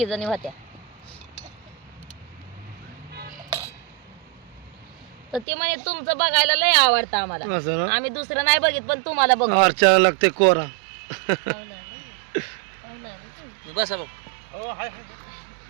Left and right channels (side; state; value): left; drops out; at 5.5 s